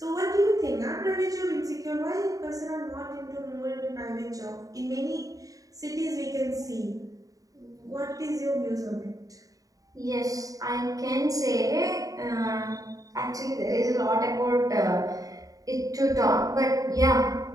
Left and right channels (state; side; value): late; left; 0.17 ms